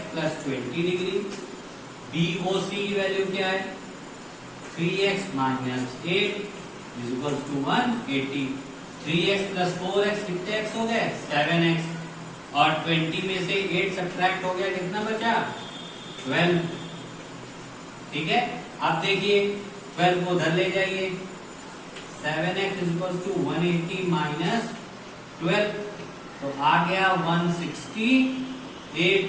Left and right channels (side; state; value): both; identical; correlation 1.00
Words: plus 20 degree. BOC की वैल्यू क्या है? 3x minus 8 is equal to 180। 3x plus 4x कितने x हो गए? 7x। और 20 में से 8 सब्ट्रैक्ट हो गया, कितना बचा? 12। ठीक है, अब देखिए 12 को उधर ले जाइए, 7x इक्वल टू 180 माइनस 12, तो आ गया 168